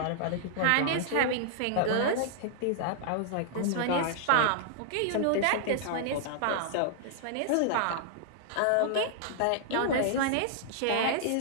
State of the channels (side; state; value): both; different; correlation -0.01